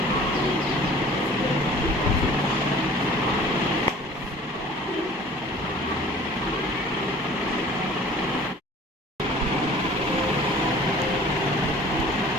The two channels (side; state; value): both; normal; correlation 0.47